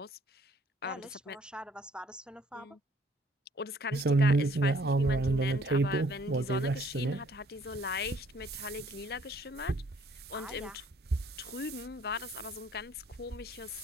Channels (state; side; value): normal; both; correlation 0.60